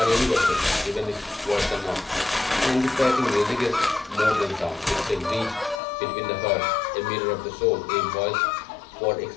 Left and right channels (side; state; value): right; drops out; at 5.8 s